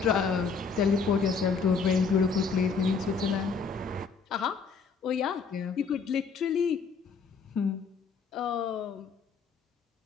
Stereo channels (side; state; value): right; quieter; 5.3 dB